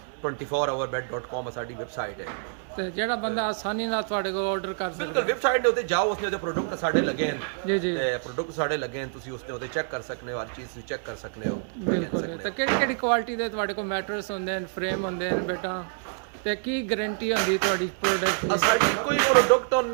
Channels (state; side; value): silent; left; digital silence